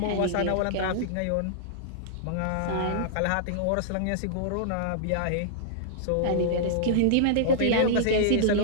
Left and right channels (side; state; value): both; different; correlation -0.02